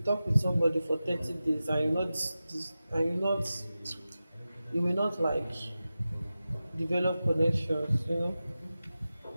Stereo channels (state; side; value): inverted; both; correlation -0.94